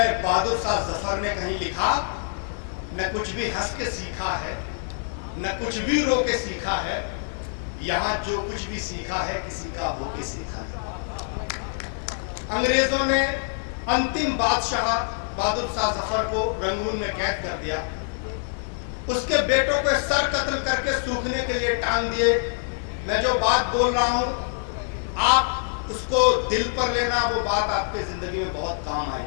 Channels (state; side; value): silent; right; 59 dB below the other